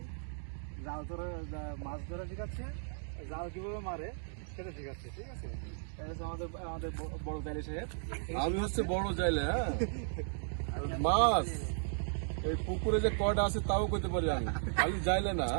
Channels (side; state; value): left; silent; digital silence